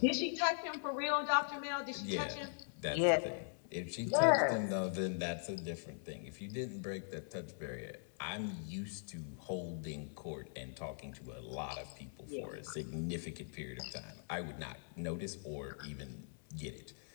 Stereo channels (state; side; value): silent; right; 51 dB below the other